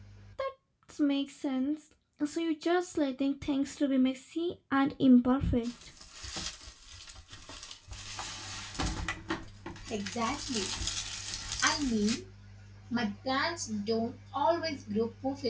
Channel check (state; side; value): identical; both; correlation 1.00